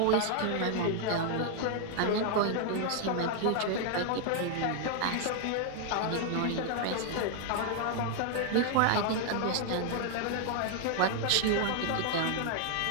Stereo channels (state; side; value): different; both; correlation 0.00